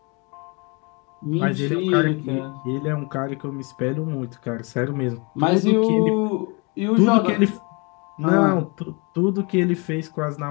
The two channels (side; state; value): right; quieter; 30.6 dB